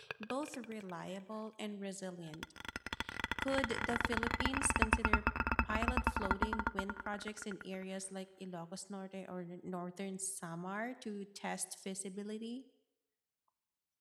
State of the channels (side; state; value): both; identical; correlation 1.00